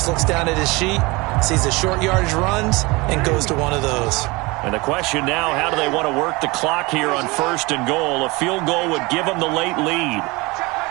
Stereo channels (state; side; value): quieter; left; 24.2 dB